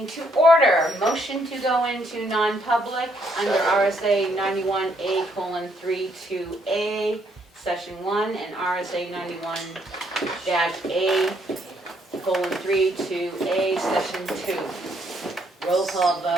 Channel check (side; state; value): both; normal; correlation 0.71